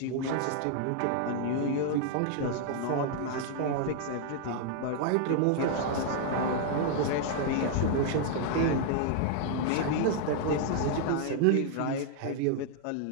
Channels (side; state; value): both; different; correlation 0.00